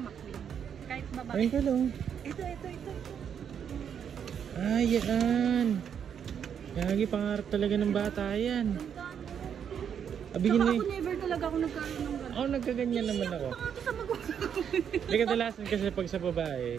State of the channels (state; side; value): quieter; left; 8.1 dB